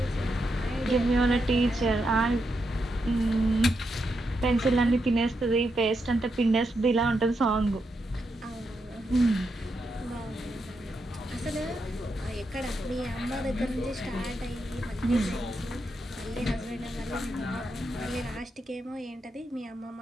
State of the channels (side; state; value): both; normal; correlation 0.83